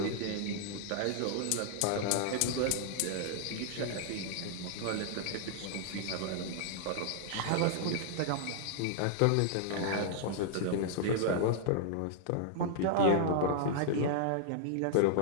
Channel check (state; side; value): different; both; correlation -0.01